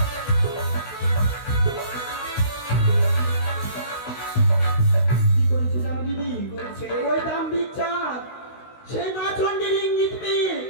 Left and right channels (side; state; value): right; late; 16 ms